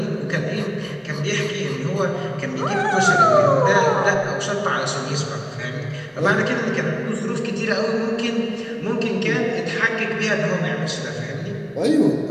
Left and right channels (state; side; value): identical; both; correlation 1.00